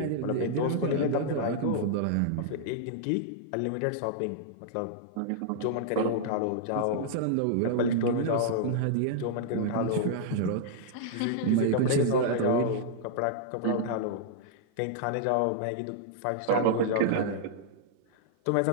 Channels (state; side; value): different; both; correlation -0.02